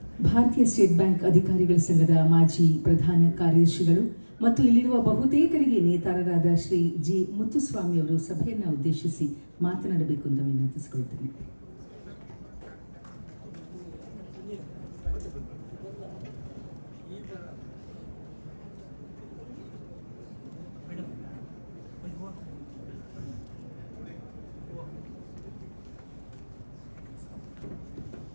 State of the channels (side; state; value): both; inverted; correlation -1.00